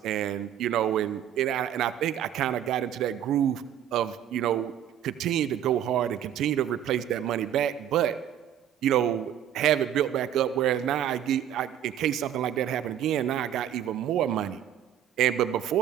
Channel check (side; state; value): left; quieter; 10.3 dB